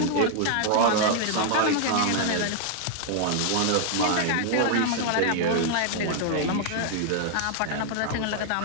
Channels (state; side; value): different; both; correlation 0.00